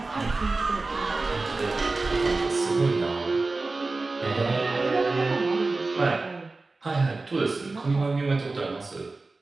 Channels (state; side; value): quieter; left; 3.5 dB